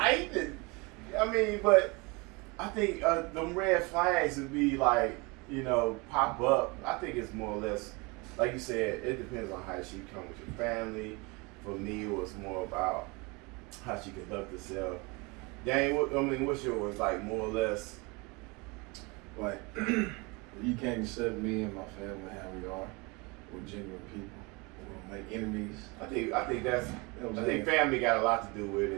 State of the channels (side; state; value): left; quieter; 27.4 dB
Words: I mean, but I think them red flags would be like, you know, pop up. I think it's more or less, like you said, it depends on how she come with your family. For me, it was more about how she conduct herself. Dang, what's yours? Like more or less. Like, you can't accept me and my family how we are. We're genuine people. We don't make enemies. I think that's. You know what I I'm think saying? family got a lot to do with